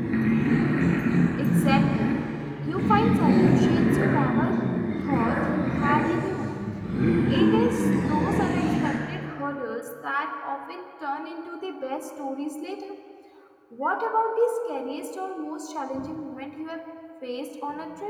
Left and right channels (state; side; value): identical; both; correlation 1.00